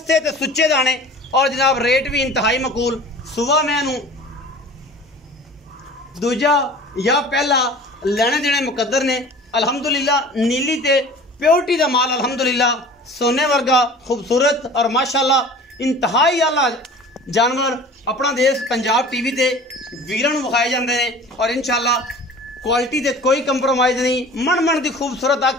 ते सुच्चे दाने और जनाब रेट भी इंतहाई मकूल। सुबह मैं दूजा या पहला लैने देने मुकद्दर ने अल्हम्दुलिल्लाह नीली ते प्योरिटी का माल अल्हम्दुलिल्लाह सोने वर्गा खूबसूरत और माशाअल्लाह इंतहाई आला जानवर अपना देश पंजाब टीवी ते वीरां नूं विखाए जांदे ने। और इंशाअल्लाह क्वालिटी ते कोई कंप्रोमाइज़ नहीं मन की खूबसूरत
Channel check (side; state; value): both; normal; correlation 0.42